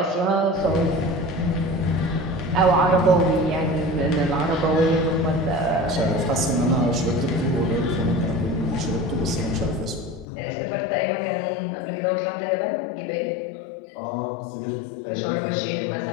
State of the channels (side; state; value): right; drops out; at 10.2 s